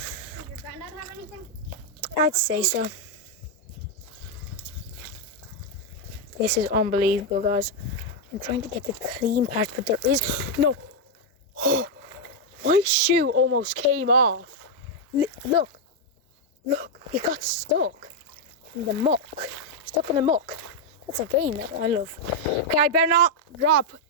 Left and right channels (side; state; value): both; normal; correlation 0.00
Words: your granddad have anything? I'd say so. This is unbelievable, guys. I'm trying to get the clean part, but there is no. Oh, my shoe almost came off. Look, it got stuck in the muck. Stuck in the muck. That's a game that I love. Okay, I better not drop